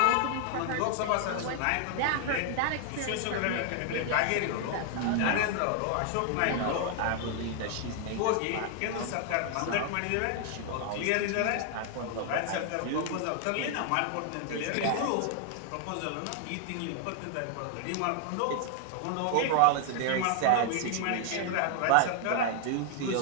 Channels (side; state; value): both; different; correlation 0.00